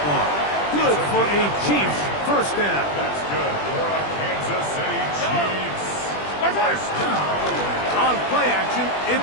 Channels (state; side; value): late; right; 20 ms